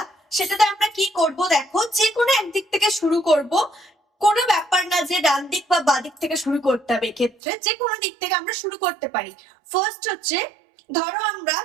সেটাতে আমরা কি করব দেখো, যে কোনো একদিক থেকে শুরু করব। কোনো ব্যাপার না যে ডান দিক বা বাঁ দিক থেকে শুরু করতে হবে, এক্ষেত্রে যে কোনো দিক থেকে আমরা শুরু করতে পারি। ফার্স্ট হচ্ছে, ধরো আমরা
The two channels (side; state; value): left; drops out; at 7.4 s